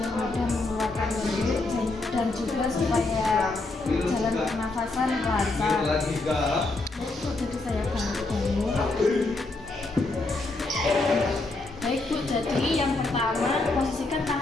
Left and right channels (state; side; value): quieter; right; 3.2 dB